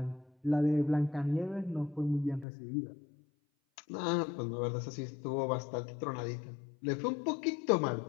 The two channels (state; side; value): drops out; right; at 2.5 s